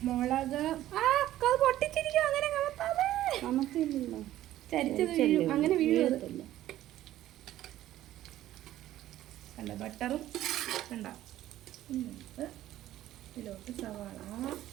മുളക്. പൊട്ടിച്ചിരിക്കും, അങ്ങനെ നമുക്കില്ലല്ലോ, ചരിച്ചത് വീഴും, അങ്ങനെ വീഴും. കണ്ട ബട്ടറും കണ്ട. ഇതിലോട്ട് സവാള.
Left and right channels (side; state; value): left; quieter; 13.8 dB